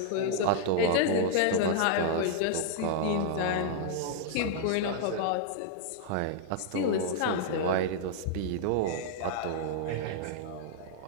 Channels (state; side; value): different; both; correlation -0.01